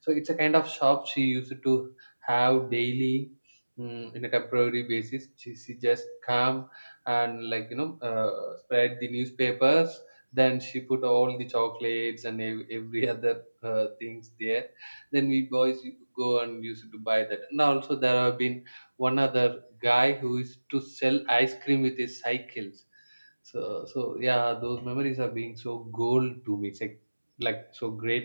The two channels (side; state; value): both; inverted; correlation -1.00